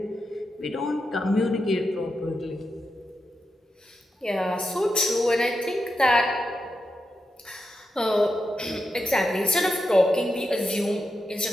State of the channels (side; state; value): both; normal; correlation 0.88